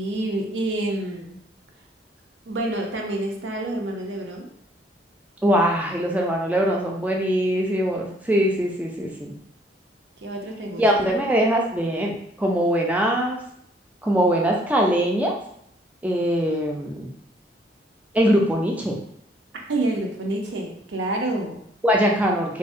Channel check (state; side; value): normal; both; correlation 0.62